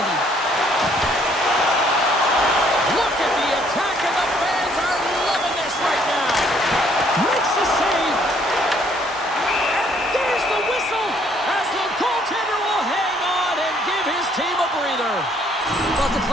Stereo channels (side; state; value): both; normal; correlation 0.65